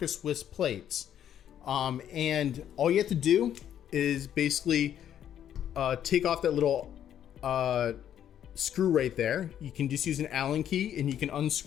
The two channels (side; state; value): right; quieter; 10.1 dB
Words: Swiss plates. And all you have to do is basically take off that little screw right there. You can just use an Allen key and you can